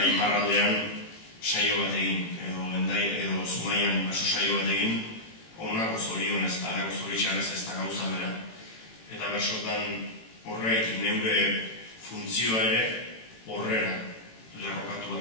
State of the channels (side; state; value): right; late; 18 ms